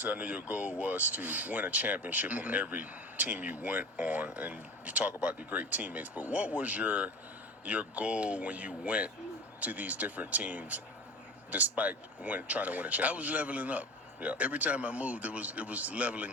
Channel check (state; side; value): normal; both; correlation 0.34